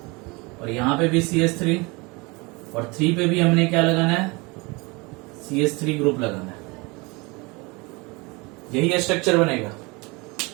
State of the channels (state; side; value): quieter; left; 26.6 dB